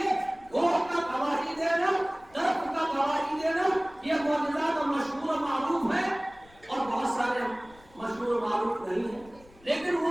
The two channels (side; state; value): left; noise; rumble, 26 dB below the sound